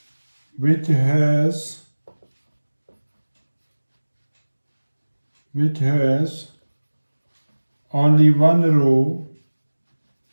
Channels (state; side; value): inverted; both; correlation -1.00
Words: which has only one row